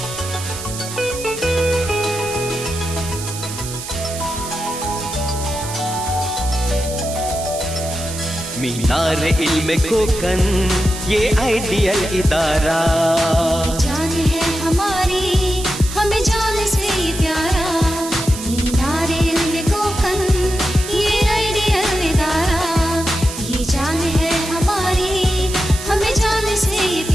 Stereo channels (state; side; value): noise; right; hiss, 10 dB below the sound